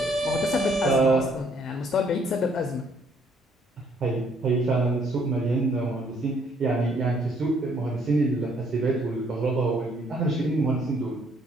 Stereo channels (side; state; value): both; normal; correlation 0.65